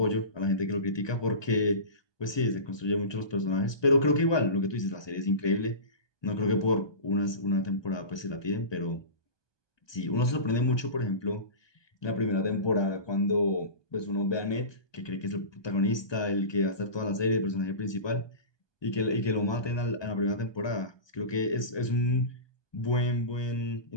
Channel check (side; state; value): right; late; 1.2 ms